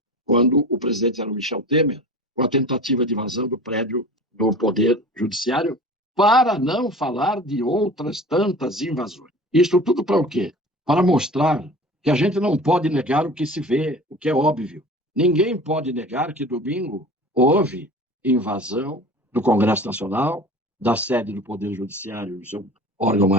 quando o presidente era o Michel Temer, com a tentativa de invasão do prédio do Poder Judiciário, para não falar de outras tantas invasões. Isto tudo para o quê? Para mostrar que a gente não pode negar o que se vê, o que é óbvio. Ninguém pode negar que domingo houve invasão do Congresso Nacional, da sede do Poder Judiciário, seu órgão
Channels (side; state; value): both; normal; correlation 0.39